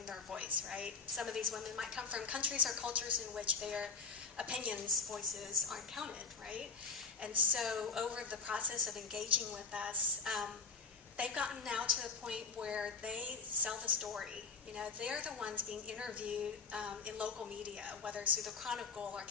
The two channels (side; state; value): right; quieter; 4.3 dB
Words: their voice, right? Some of these women might come from countries or cultures in which their opinions, voices aren't counted, right? And so over the process of engaging with us, they've gotten now to the point where they sell the story. You know, they're the ones being interviewed in local media, whether it's through the Chronicle or